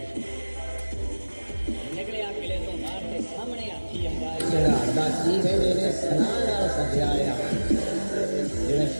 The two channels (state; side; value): inverted; both; correlation -1.00